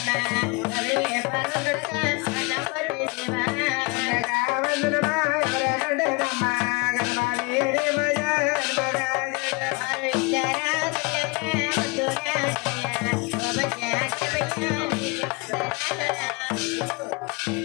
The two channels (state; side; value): quieter; right; 27.8 dB